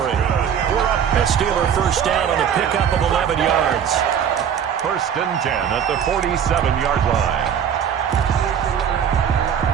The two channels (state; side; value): quieter; left; 8.4 dB